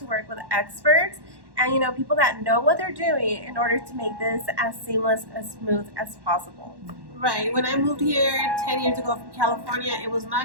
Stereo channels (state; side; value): late; left; 1.1 ms